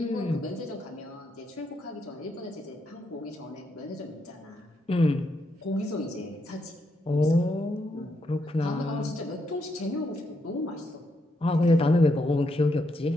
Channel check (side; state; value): both; normal; correlation 0.79